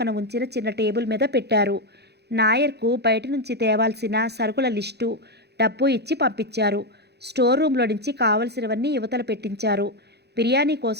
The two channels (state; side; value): late; left; 0.48 ms